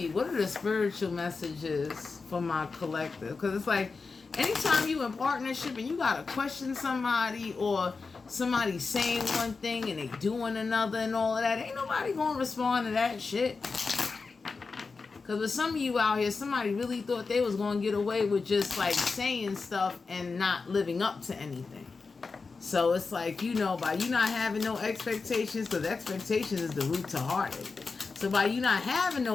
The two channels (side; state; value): right; quieter; 4.4 dB